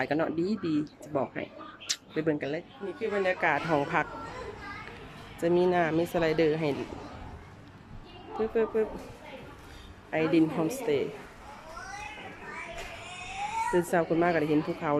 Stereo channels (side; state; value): both; identical; correlation 1.00